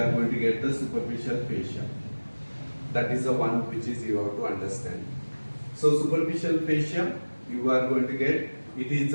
going to get the superficial fascia. That is the one which is you have to understand. So superficial fascia, you are going to get, it is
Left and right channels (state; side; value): inverted; both; correlation -1.00